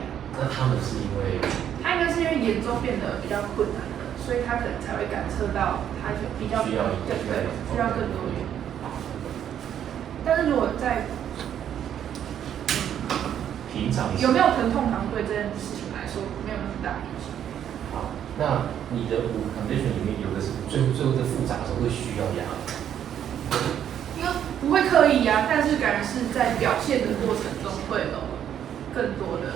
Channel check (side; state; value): left; quieter; 9.8 dB